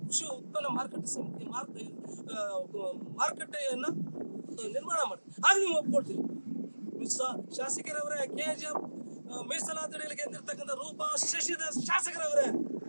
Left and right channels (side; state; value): both; inverted; correlation -1.00